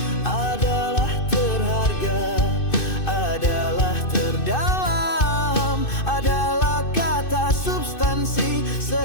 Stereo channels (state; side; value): late; right; 2.6 ms